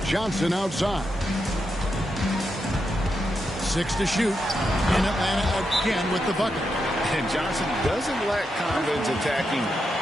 Johnson outside. 6 to shoot. And Atlanta again with the bucket. And Johnson doesn't lack confidence attacking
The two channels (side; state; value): both; normal; correlation 0.85